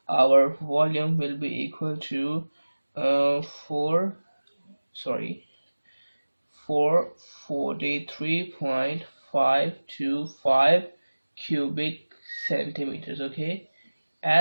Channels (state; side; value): inverted; both; correlation -1.00